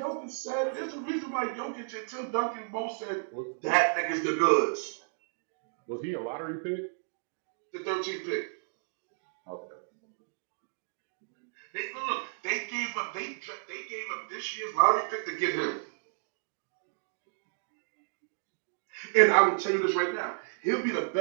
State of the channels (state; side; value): silent; left; digital silence